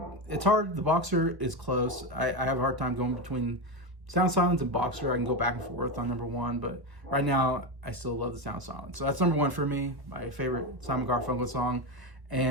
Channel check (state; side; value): late; left; 1.3 ms